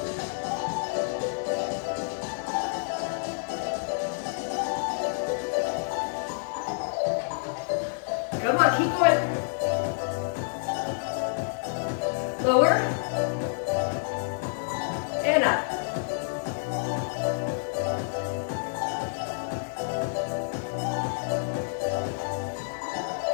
Come on, keep going. Lower. And up.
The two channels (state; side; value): silent; right; digital silence